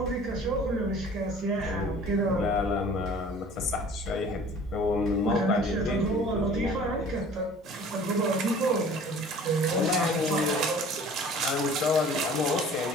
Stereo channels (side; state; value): both; normal; correlation 0.48